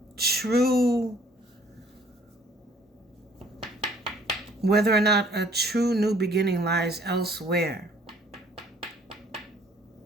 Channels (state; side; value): normal; both; correlation 0.58